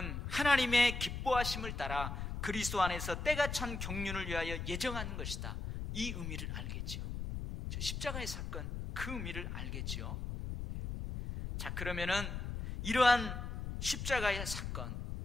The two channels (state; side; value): noise; left; rumble, 5 dB below the sound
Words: 하나님의 기뻐하심을 따라 그리스도 안에서 때가 찬 경륜을 위하여 예정하는 것이다. 이 의미를 알겠지요. 저 십자가의 사건, 그 의미를 알겠지요. 자, 그러면은 이러한 십자가의 사건,